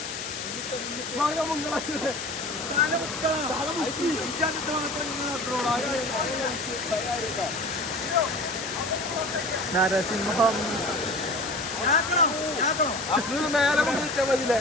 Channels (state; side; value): noise; left; hiss, 7 dB below the sound